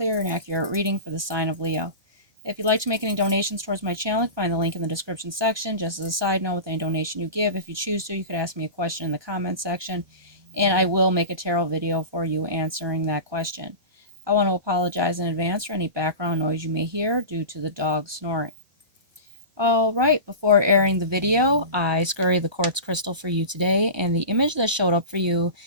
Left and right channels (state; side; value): late; left; 1.2 ms